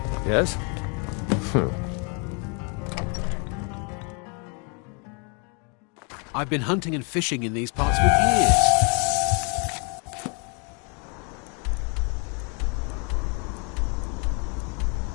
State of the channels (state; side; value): quieter; right; 35.3 dB